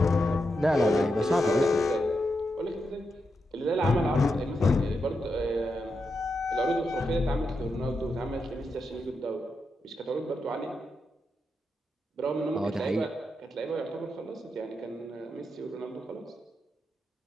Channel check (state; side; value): normal; both; correlation 0.85